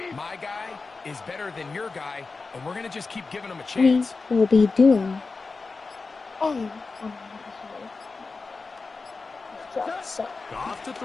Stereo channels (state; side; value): quieter; right; 4.1 dB